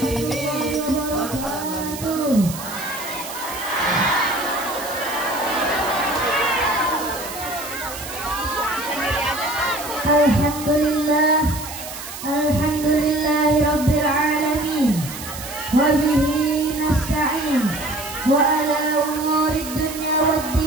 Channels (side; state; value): right; noise; hiss, 11 dB below the sound